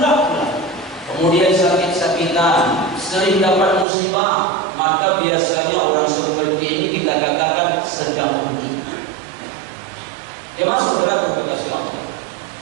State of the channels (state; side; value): drops out; left; at 3.9 s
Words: pula, kemudian sakit-sakitan, sering dapat musibah, maka biasanya orang seperti ini kita katakan sedang rugi. Jemaah saudara kekasih Allah,